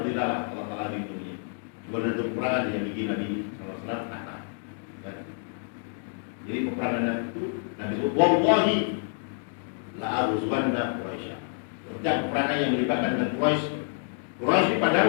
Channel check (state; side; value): silent; right; 56 dB below the other